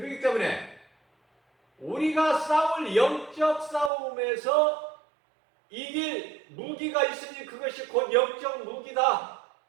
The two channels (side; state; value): left; drops out; at 3.9 s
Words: 때문에 우리가 싸울 영적 싸움에서 이길 무기가 있으니 그것이 곧 영적 무기다.